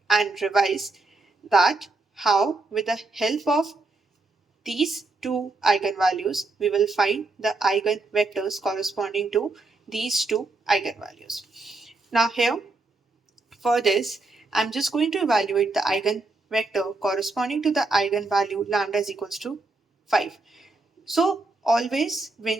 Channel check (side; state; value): left; quieter; 3.3 dB